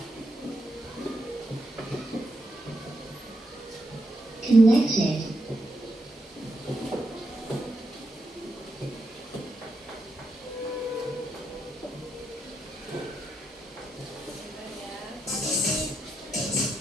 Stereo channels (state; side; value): normal; both; correlation 0.83